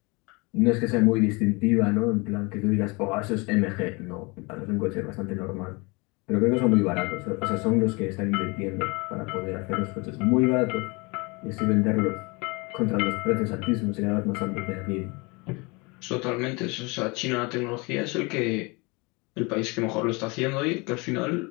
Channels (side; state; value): right; quieter; 27.6 dB